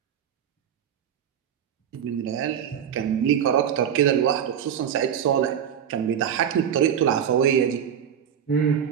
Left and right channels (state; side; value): quieter; left; 8.8 dB